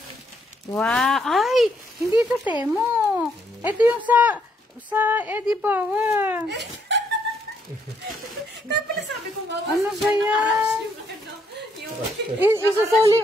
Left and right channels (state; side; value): normal; both; correlation 0.72